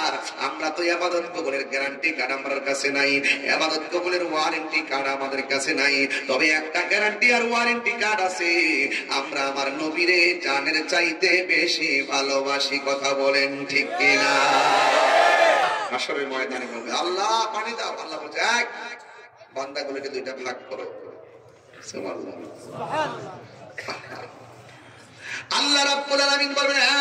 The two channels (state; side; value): identical; both; correlation 1.00